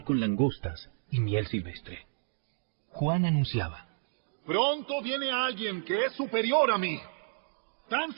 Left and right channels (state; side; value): silent; left; digital silence